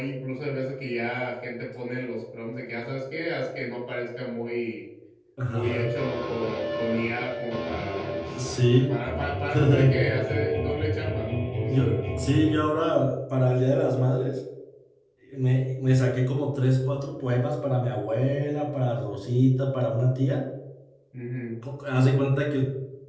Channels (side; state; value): both; identical; correlation 1.00